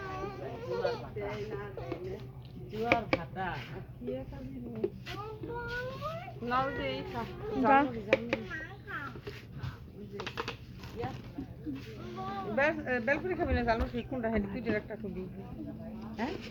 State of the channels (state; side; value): identical; both; correlation 1.00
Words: জোয়ার ভাতা কি খাবি নাও দে খা বেলপুরি খাবি না জানো ঠিক কোনটা হেডি তুই একটা খুবই হ্যাঁ